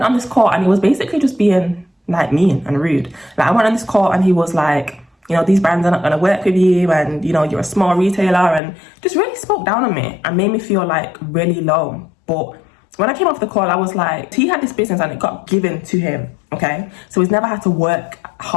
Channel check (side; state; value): right; drops out; at 8.6 s